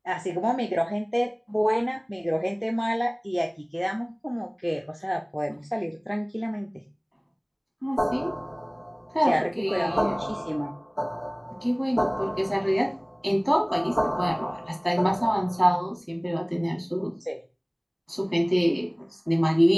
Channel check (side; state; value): both; identical; correlation 1.00